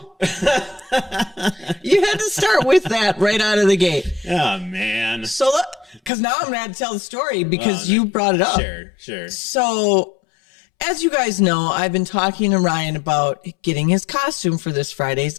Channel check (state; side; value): drops out; right; at 6.1 s